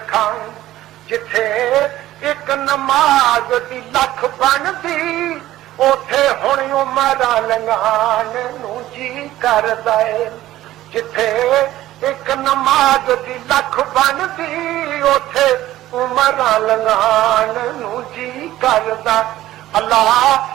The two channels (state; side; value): quieter; left; 14.8 dB